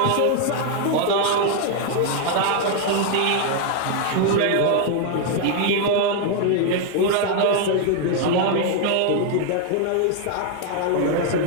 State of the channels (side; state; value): both; different; correlation 0.00